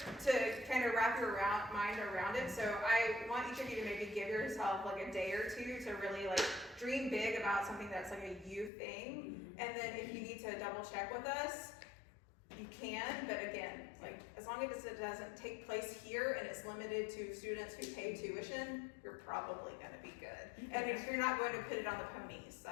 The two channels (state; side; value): drops out; right; at 8.7 s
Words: to kind of wrap your mind around it. So I want each of you to maybe give yourself like a day or two to really like dream big about something that's like a you thing. And then if you need to double check with us, you can, but again, like, as long as it doesn't take place here and it's limited to students who pay tuition, you're probably gonna be good. And if you're not going to put it on the ponies,